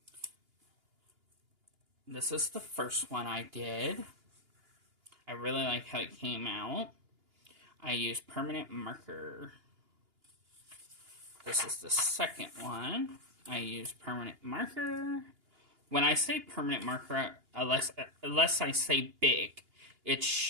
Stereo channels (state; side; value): late; left; 2.8 ms